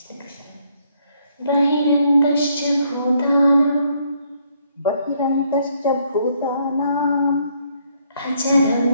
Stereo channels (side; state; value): both; inverted; correlation -0.70